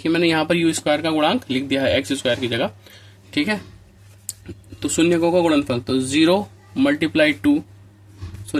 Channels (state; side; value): identical; both; correlation 1.00